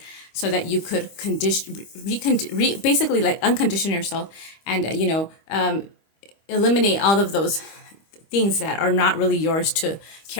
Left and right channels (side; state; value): right; late; 25 ms